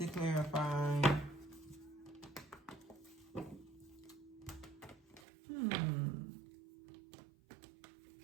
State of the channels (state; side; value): drops out; left; at 5.2 s